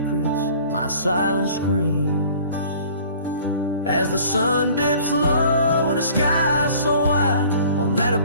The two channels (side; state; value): both; inverted; correlation -0.50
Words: my silent screams. As the sun dips low in a sky so wide, on that